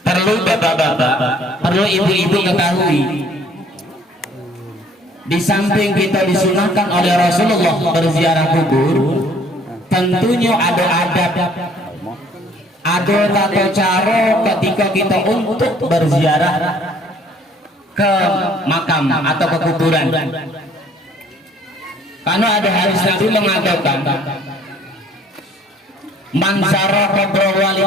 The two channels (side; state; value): both; normal; correlation 0.58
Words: perlu bapak-bapak, perlu ibu-ibu ketahui, di samping kita disunahkan oleh Rasulullah berziarah kubur, tentunya ada adab, ada tata cara ketika kita untuk berziarah ke makam atau ke kuburan. Karena ada hadis Nabi mengatakan, man zara qabra